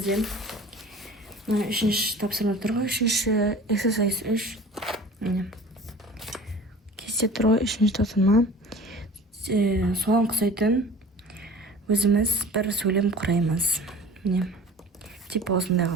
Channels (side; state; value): both; normal; correlation 0.42